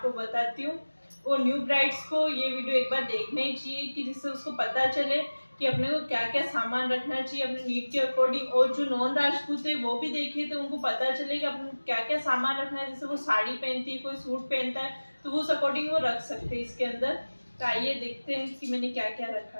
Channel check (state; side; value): inverted; both; correlation -1.00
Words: बताती हूँ। और न्यू ब्राइड्स को ये वीडियो एक बार देखना ही चाहिए कि जिससे उसको पता चले कि अपने को क्या क्या सामान रखना चाहिए अपने नीड के अकॉर्डिंग। और जो नॉन राजपूत है वो भी देखे तो उनको पता चले कि अपने क्या क्या सामान रखना है। जैसे वो साड़ी पहनती है, कोई सूट पहनता है तो उस अकॉर्डिंग वो रख सकते हैं इसके अंदर। तो आइए देखते हैं कि मैंने क्या क्या रखा